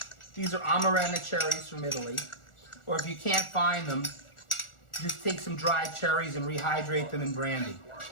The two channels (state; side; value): late; right; 1.4 ms